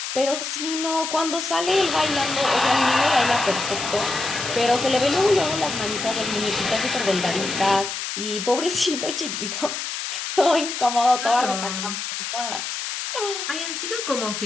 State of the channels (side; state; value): left; noise; hiss, 5 dB below the sound